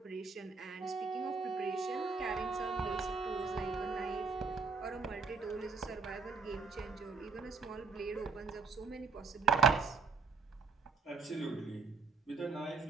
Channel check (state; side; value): quieter; left; 4.8 dB